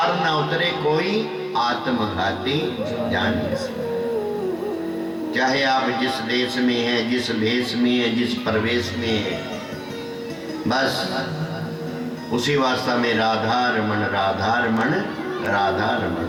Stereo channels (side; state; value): both; identical; correlation 1.00